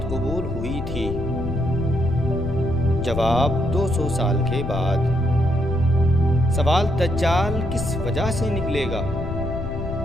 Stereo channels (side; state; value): left; noise; rumble, 7 dB below the sound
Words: قبول ہوئی تھی؟ جواب: 200 سال کے بعد۔ سوال: دجال کس وجہ سے نکلے گا؟